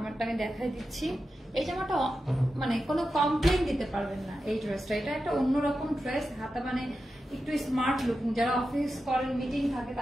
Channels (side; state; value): both; normal; correlation 0.91